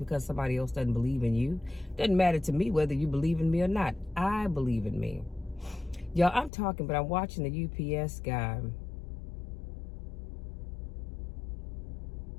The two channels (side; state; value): right; drops out; at 6.5 s